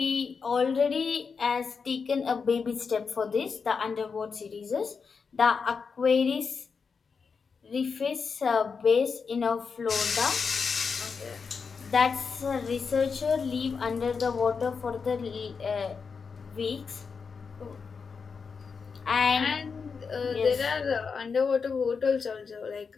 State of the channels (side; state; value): right; quieter; 5.4 dB